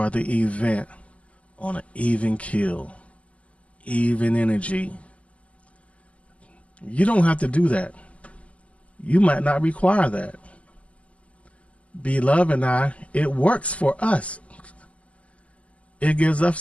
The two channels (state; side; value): late; right; 0.065 ms